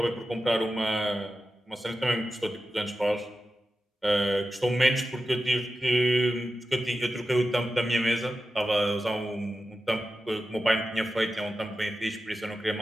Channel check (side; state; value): both; normal; correlation 0.92